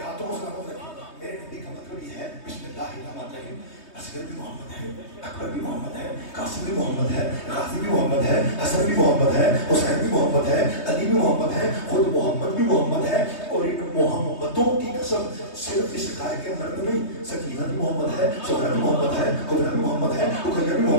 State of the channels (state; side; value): late; right; 3.2 ms